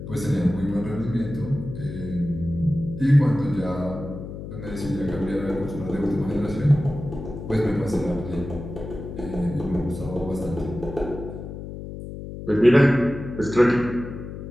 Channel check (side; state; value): left; noise; hum, 10 dB below the sound